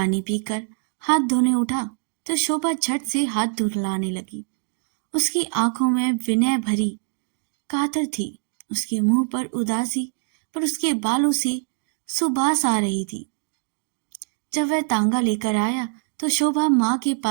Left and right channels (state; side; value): silent; left; 63 dB below the other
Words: पीकर हाथ धोने उठा तो शोभा झट से हाथ धुलाने लगी। उसकी आंखों में विनय भरी कातर थी, उसके मुंह पर उदासी, पर उसके बालों से सुबास आ रही थी। जब वह तांगा लेकर आया तो शोभा माँ के